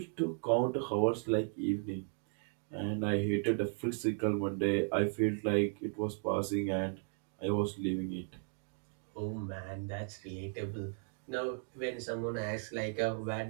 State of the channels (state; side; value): silent; left; 54 dB below the other